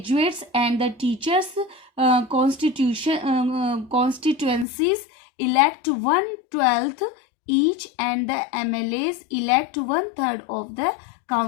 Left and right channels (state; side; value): drops out; right; at 4.7 s